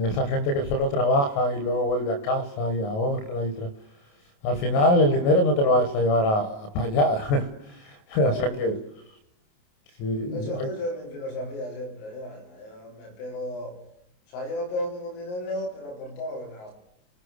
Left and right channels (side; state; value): right; late; 28 ms